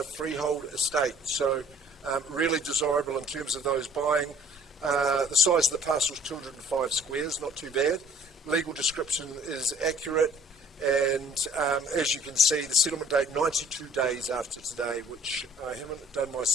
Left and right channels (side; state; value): both; normal; correlation 0.56